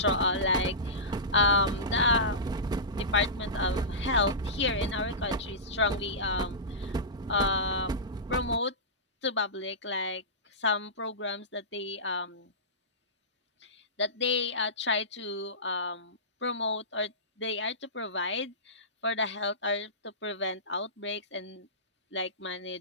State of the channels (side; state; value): both; normal; correlation -0.18